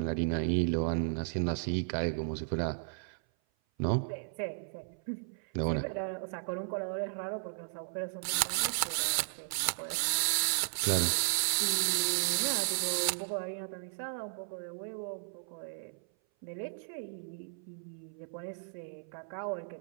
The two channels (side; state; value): left; silent; 55 dB below the other